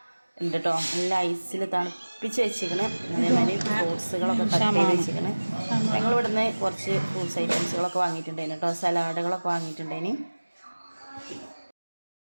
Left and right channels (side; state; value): both; inverted; correlation -1.00